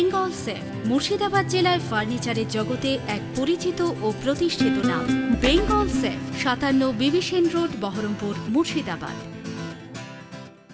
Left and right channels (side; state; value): both; identical; correlation 1.00